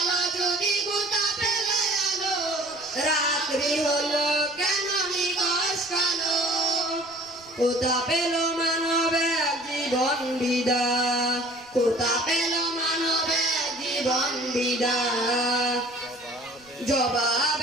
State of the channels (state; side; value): noise; right; rumble, 29 dB below the sound